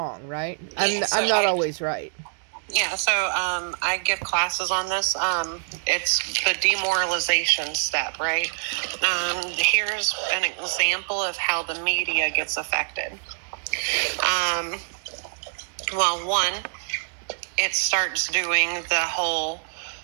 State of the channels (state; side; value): silent; left; digital silence